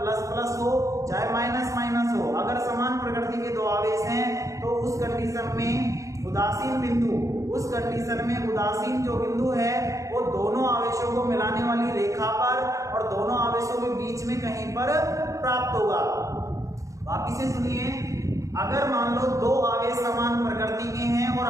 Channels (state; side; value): late; left; 0.15 ms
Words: प्लस हो चाहे माइनस माइनस हो, अगर समान प्रकृति के 2 आवेश हैं तो उस कंडीशन में उदासीन जो बिंदु है वो दोनों आवेशों को मिलाने वाली रेखा पर और दोनों आवेशों के बीच में कहीं पर प्राप्त होगा। वापिस से सुनिए, अगर मान लो 2 आवेश समान प्रकृति के हैं और